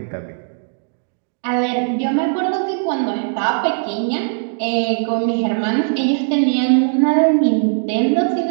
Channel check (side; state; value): left; silent; digital silence